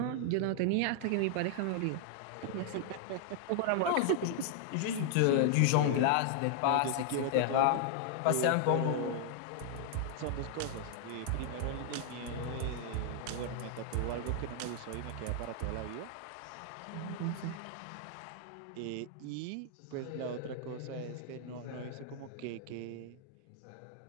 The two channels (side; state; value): both; different; correlation 0.00